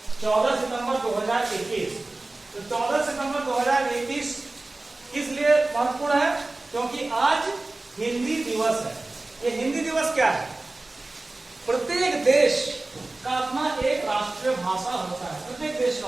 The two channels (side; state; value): left; quieter; 3.0 dB